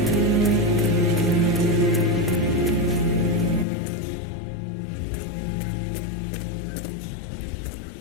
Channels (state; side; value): drops out; right; at 3.7 s